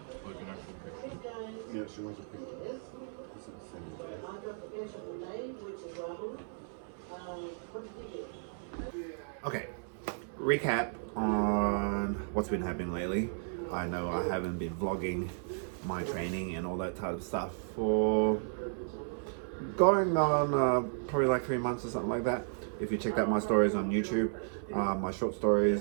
Yeah, she wants a picture. This is the same. Okay. Recap on what's been happening lately. I know I haven't been vlogging my training and all that type of stuff for going on probably like 3 months or something like that. If you check out my stories on YouTube, my short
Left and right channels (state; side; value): silent; left; 55 dB below the other